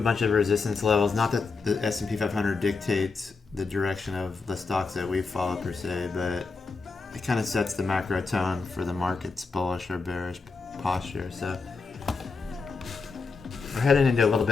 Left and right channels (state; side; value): quieter; right; 4.4 dB